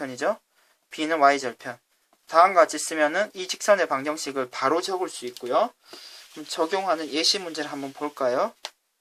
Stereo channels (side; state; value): both; identical; correlation 1.00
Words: b는 y절편. 다음과 같이 쓰면은 이 직선의 방정식을 바로 적을 수 있고요. 그럼 적용하는 예시 문제를 한번 볼까요?